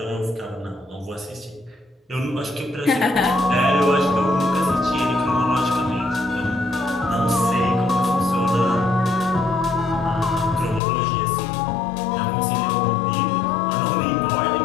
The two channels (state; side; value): drops out; right; at 10.8 s